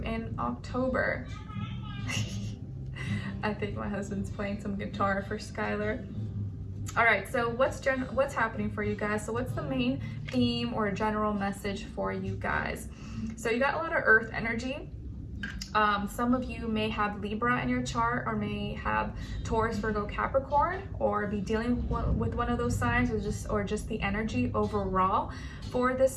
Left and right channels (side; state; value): both; identical; correlation 1.00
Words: October. I think my husband's playing some guitar for Skylar. All right, so what's happening for you guys? So what's the main theme or general message for you guys? So you got a lot of earth energy. Some of you may have Libra in your chart, or may have Taurus, Virgo, Capricorn, or be dealing with one of those signs, or just the energy overall for